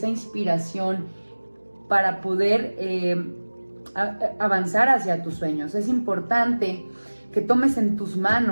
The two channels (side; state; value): both; inverted; correlation -1.00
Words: inspiración para poder avanzar hacia tus sueños. Es importante que tomes en tus